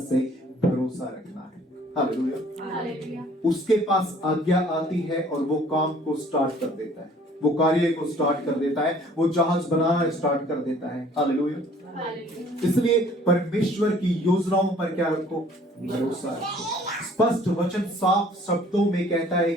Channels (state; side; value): normal; both; correlation 0.55